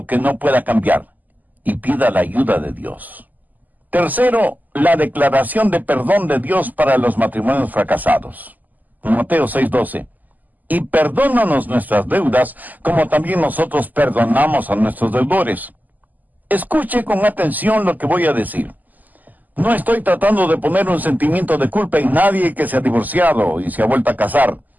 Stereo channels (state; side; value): late; left; 0.082 ms